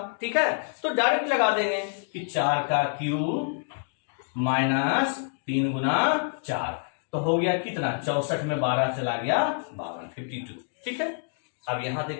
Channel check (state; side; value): silent; right; 60 dB below the other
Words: ठीक है, तो डायरेक्ट लगा देंगे कि 4 का क्यूब माइनस 3 गुना 4, तो हो गया कितना 64 में 12 चला गया 52। ठीक है, अब यहां